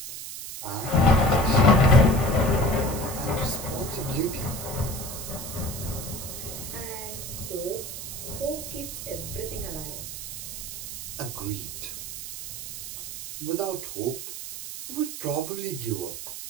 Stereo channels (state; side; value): noise; right; hiss, 8 dB below the sound